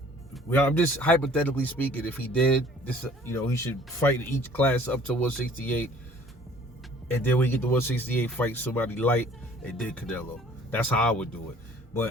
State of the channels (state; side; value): normal; both; correlation 0.53